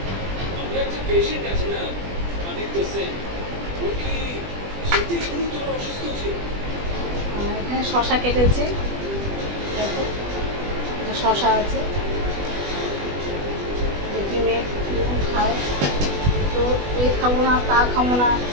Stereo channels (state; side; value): late; left; 20 ms